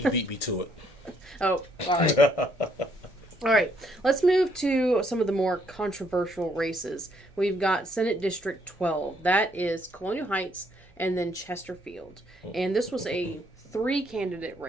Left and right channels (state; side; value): normal; both; correlation 0.70